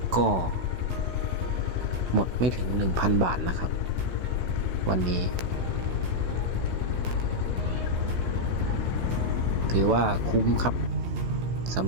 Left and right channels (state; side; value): late; left; 16 ms